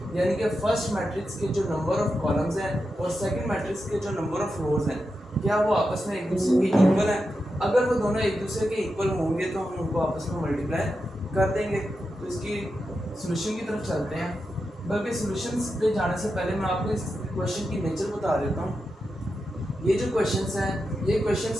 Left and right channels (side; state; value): both; normal; correlation 0.89